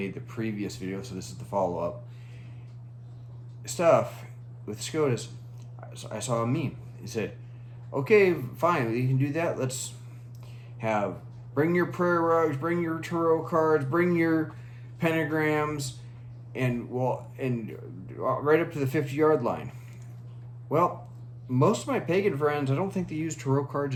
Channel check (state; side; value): identical; both; correlation 1.00